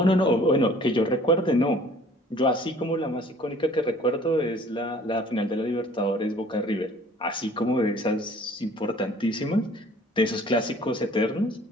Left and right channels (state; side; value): normal; both; correlation 0.53